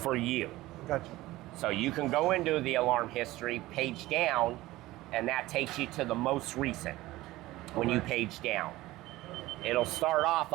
for you. Gotcha. So you can go into the alarm history, page down, and that takes you to the most recent when you page down. It'll start off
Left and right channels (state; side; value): quieter; left; 17.8 dB